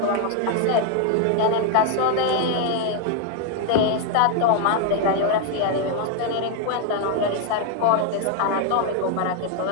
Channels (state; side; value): different; both; correlation 0.01